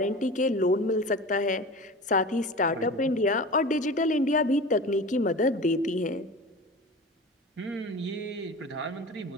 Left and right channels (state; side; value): normal; both; correlation 0.34